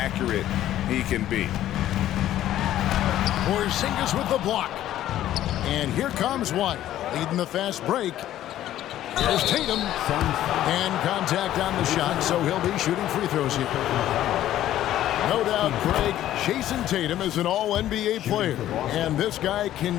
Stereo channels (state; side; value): quieter; right; 12.8 dB